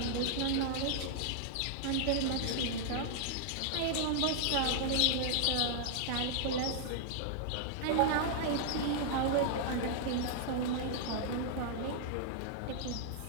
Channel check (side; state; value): both; different; correlation -0.01